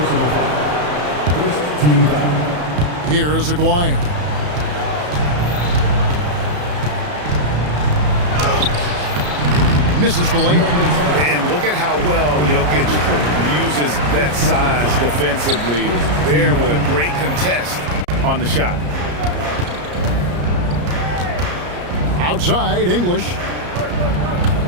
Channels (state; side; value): late; left; 34 ms